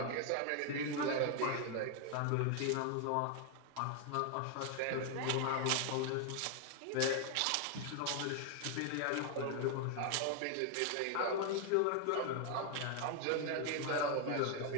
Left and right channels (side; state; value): both; different; correlation 0.00